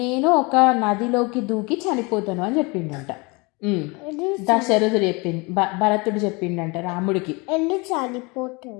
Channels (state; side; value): quieter; right; 27.3 dB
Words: నేను ఒక నదిలోకి దూకి చనిపోతాను అని చెప్పిండంట. దశరథుడు చెప్పింది, భరతుడు చెప్పిండంట రాముడికి. ఎందుకు